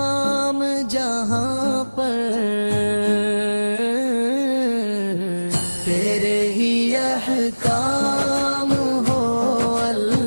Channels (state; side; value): inverted; both; correlation -1.00